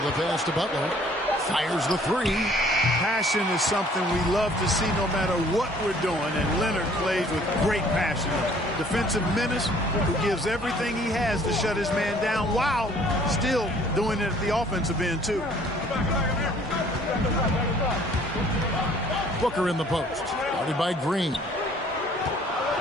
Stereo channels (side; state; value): both; normal; correlation 0.57